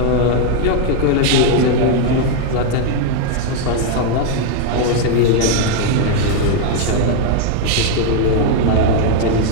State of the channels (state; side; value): different; both; correlation 0.00